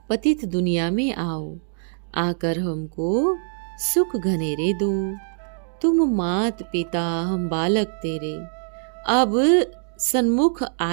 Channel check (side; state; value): left; silent; digital silence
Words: पतित दुनिया में आओ, आकर हमको सुख घनेरे दो। तुम मात पिता हम बालक तेरे, अब सन्मुख